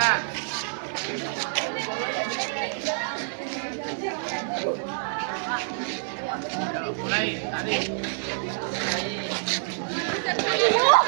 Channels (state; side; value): silent; left; 59 dB below the other